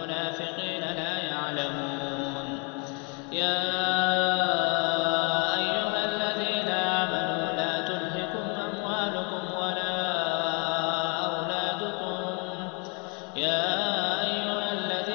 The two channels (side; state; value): right; quieter; 34.5 dB